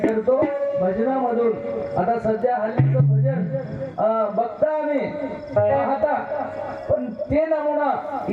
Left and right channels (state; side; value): identical; both; correlation 1.00